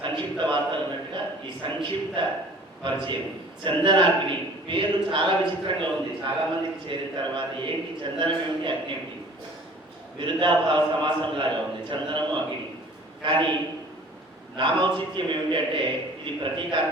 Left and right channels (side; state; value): both; normal; correlation 0.48